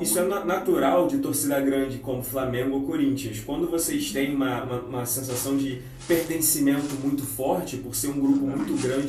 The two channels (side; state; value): both; identical; correlation 1.00